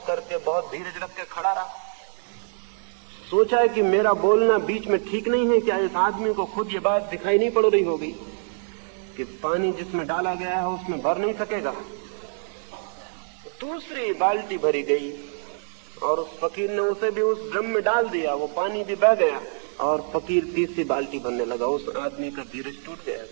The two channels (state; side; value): silent; left; digital silence